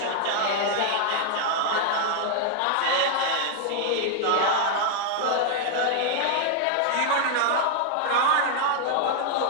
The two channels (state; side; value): different; both; correlation 0.00